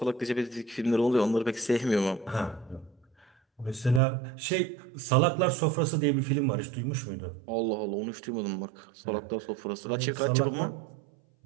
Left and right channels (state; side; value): drops out; left; at 4.0 s